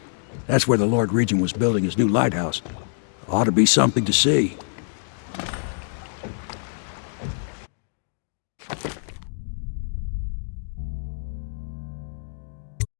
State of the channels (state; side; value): silent; right; digital silence